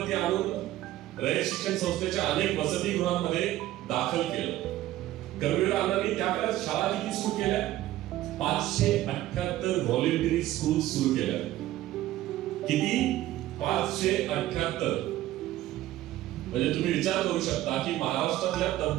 आणून रयत शिक्षण संस्थेच्या अनेक वसतिगृहांमध्ये दाखल केलं. कर्मवीर अण्णांनी त्या काळात शाळा किती सुरू केल्या? 578 व्हॉलेंटरी स्कूल सुरू केल्या. किती? 578. म्हणजे तुम्ही विचार करू शकता की महाराष्ट्रातल्या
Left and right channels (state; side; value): quieter; left; 14.7 dB